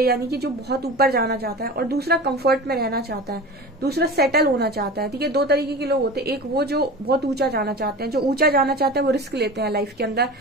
यानी कि जो बहुत ऊपर जाना चाहता है, और दूसरा कंफर्ट में रहना चाहता है, दूसरा सेटल होना चाहता है, ठीक है। दो तरीके के लोग होते हैं, एक वो जो बहुत ऊंचा जाना चाहते हैं, जो ऊंचा जाना चाहते हैं वो रिस्क लेते हैं लाइफ के अंदर,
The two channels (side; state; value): both; normal; correlation 0.33